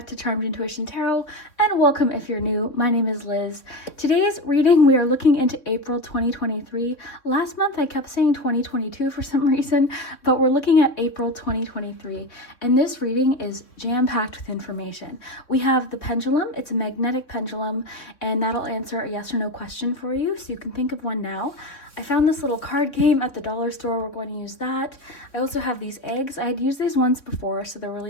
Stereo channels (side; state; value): right; late; 3.6 ms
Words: to Charmed Intuition Tarot, and welcome if you're new. My name is Liz. Today's reading, we are looking into April 2023. Last month I kept saying 2022 for some reason, but we're looking at April 2023. And this reading is jam-packed with information. We have the pendulum, it's a magnetic pendulum, and that'll answer a yes or no question for you, so you can think of one now. I found this little card game at the dollar store. We're going to use that. I also have these eggs. I had used these once before, so they're